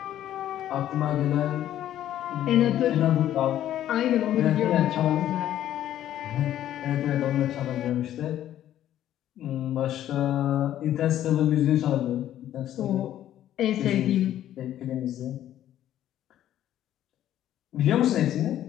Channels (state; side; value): quieter; right; 12.0 dB